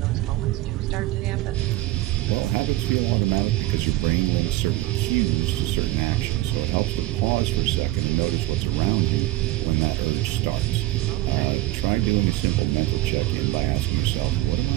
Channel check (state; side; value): quieter; left; 17.2 dB